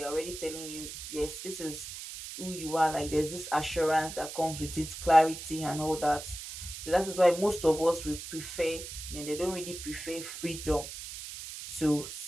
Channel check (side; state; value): right; noise; hiss, 10 dB below the sound